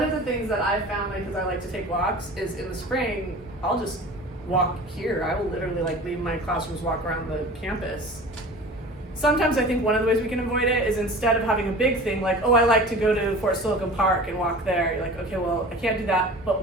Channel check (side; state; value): both; normal; correlation 0.39